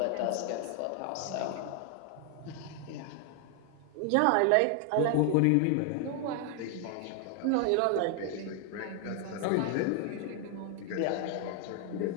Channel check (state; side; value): different; both; correlation 0.00